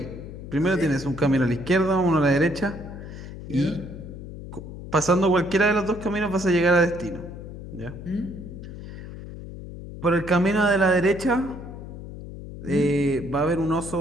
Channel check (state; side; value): noise; left; hum, 12 dB below the sound